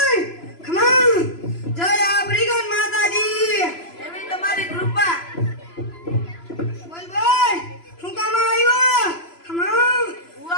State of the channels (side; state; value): right; late; 3.0 ms